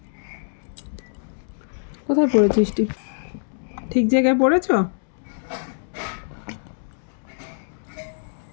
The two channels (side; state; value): right; silent; digital silence